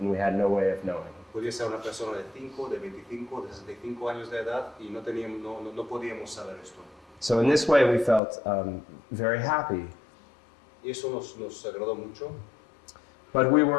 we had no way of knowing. Podía ser una persona de 5, de 25, de 65 años de edad y no podíamos saber esto. So in this way, we felt very happy. Y eso nos agradó mucho, But we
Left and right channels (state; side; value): drops out; right; at 8.2 s